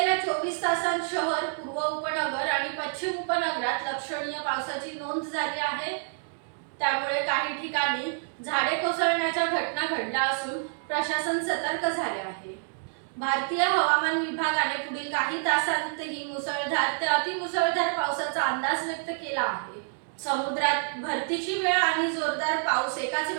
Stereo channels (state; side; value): silent; left; digital silence